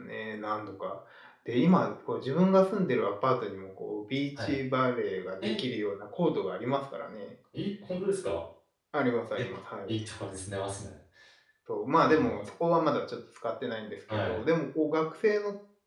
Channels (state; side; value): identical; both; correlation 1.00